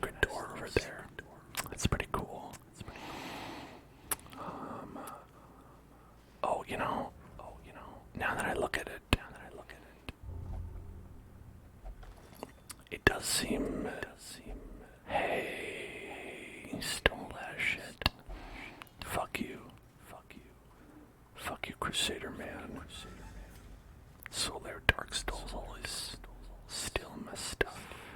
door over there. That's pretty cool. Oh, you know, now that I look at it, it does seem, hey, you stole that shit. Fuck you, Crusader man. Solar Darkstal's always steal my stuff.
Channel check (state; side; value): identical; both; correlation 1.00